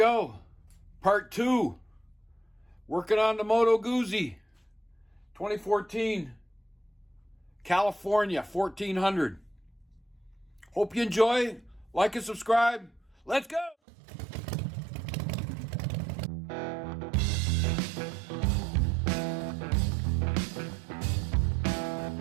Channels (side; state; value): left; drops out; at 13.8 s